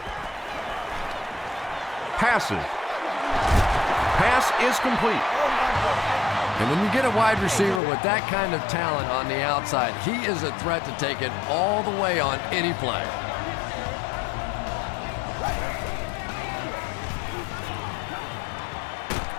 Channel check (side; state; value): right; drops out; at 7.8 s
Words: Passes. Pass is complete. And when you get a wide receiver with that kind of talent on the outside, he is a threat to take it all the way on any play.